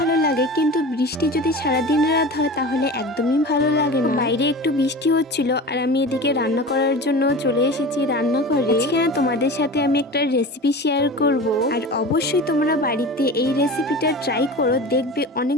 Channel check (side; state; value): both; normal; correlation 0.34